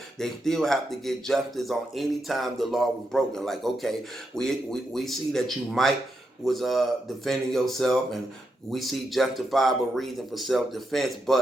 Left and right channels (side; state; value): both; normal; correlation 0.84